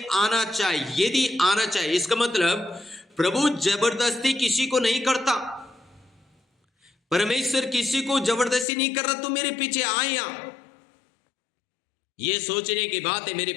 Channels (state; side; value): drops out; right; at 8.7 s